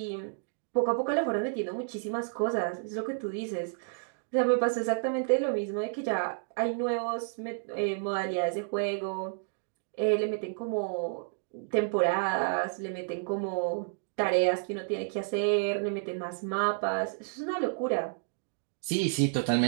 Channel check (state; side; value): silent; left; digital silence